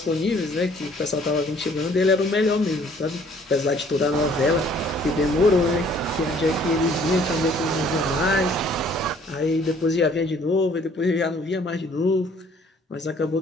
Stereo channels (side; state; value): both; normal; correlation 0.59